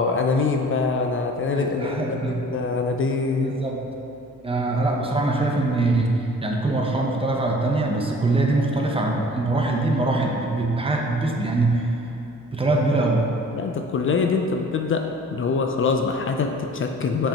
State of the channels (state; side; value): noise; left; hum, 30 dB below the sound